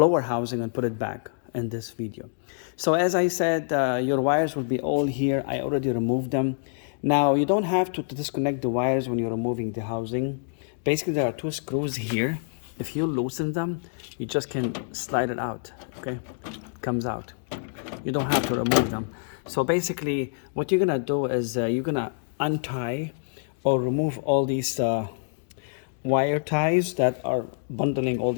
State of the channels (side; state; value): right; silent; digital silence